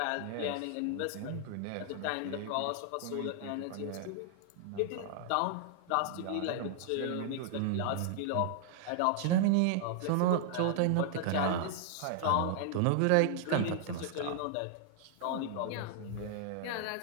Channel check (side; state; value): both; different; correlation -0.01